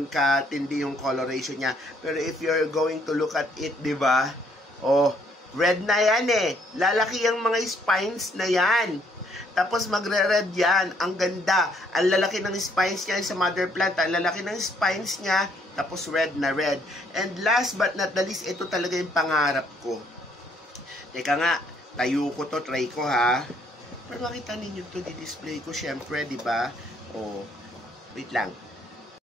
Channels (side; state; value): both; normal; correlation 0.67